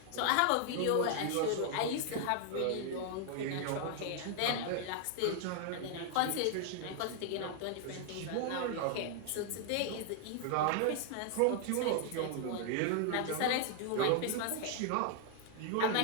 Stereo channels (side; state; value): both; different; correlation 0.00